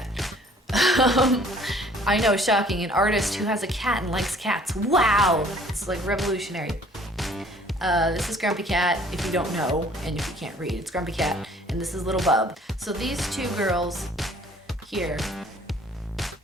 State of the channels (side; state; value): both; normal; correlation 0.55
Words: I know, shocking, an artist who has a cat and likes cats. Wow! It's like revolutionary. This is Grumpy Cat, if you don't know, and if you can't read, it's Grumpy Cat, and this is Little Bub. So these two girls here